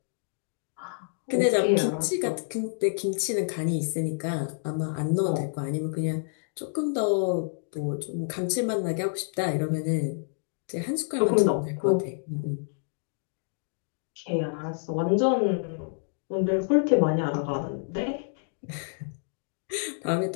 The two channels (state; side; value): silent; right; digital silence